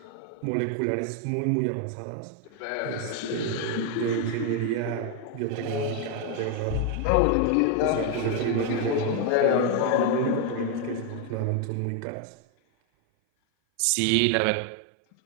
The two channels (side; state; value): both; different; correlation 0.01